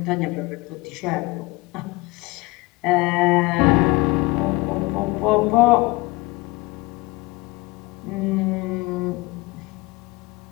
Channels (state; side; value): quieter; right; 22.6 dB